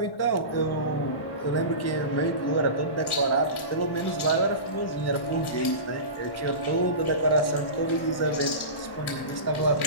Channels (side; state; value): right; late; 1.1 ms